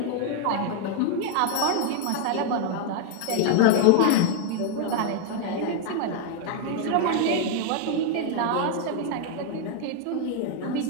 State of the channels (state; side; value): different; both; correlation 0.00